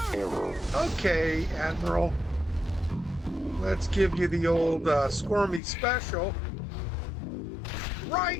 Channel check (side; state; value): right; drops out; at 5.6 s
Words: Okay, Admiral. Let's give you the old Scormey special.